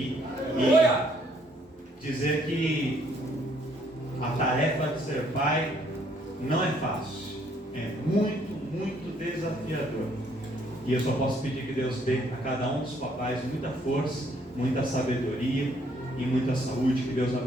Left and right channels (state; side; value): normal; both; correlation 0.66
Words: E dizer que a tarefa de ser pai não é fácil, é muito, muito desafiador. E eu só posso pedir que Deus dê a cada um dos papais muita força, muita sabedoria e muita saúde. Que Deus